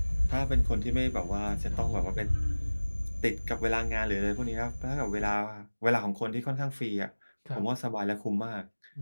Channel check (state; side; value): inverted; both; correlation -1.00